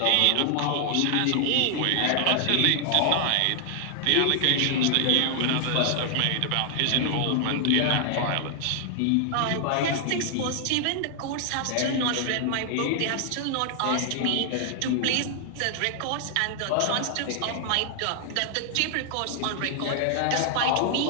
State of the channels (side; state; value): both; different; correlation 0.00